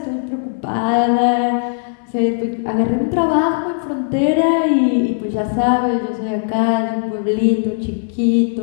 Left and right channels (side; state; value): right; silent; 65 dB below the other